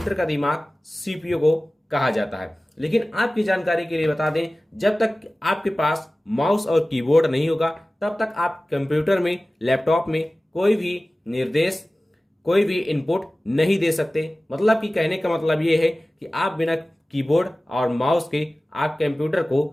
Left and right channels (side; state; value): both; normal; correlation 0.97